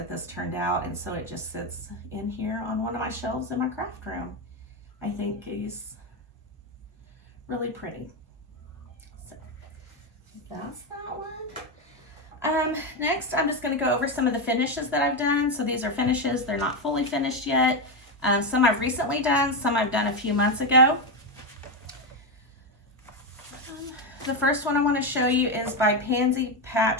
this turned out, and so it just sits in here on one of my shelves in my craft room. I think he's really pretty. So that's that one. Next, I'm just going to go over some of the finishes that I've done. So these are finishes. They're not fully finished yet. Some I've recently done, some I've done a few months ago. The first one I want to show you is by Pansy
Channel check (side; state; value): both; normal; correlation 0.09